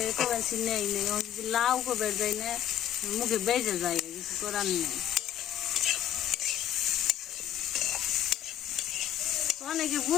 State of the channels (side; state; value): right; quieter; 11.0 dB